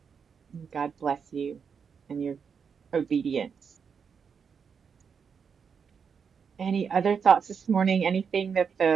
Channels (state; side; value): quieter; left; 6.4 dB